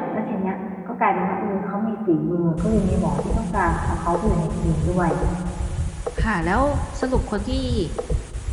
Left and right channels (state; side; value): identical; both; correlation 1.00